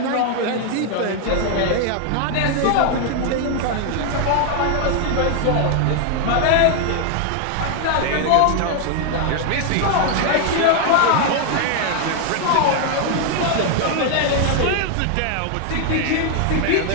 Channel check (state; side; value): different; both; correlation 0.00